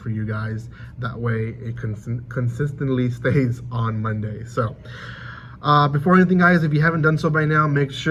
you guys. That way it consistently stays on Monday. So before anything, guys, if you haven't done so by now, make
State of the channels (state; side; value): identical; both; correlation 1.00